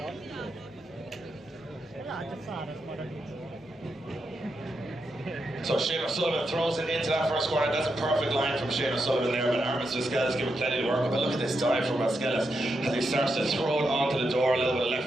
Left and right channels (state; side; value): normal; both; correlation 0.84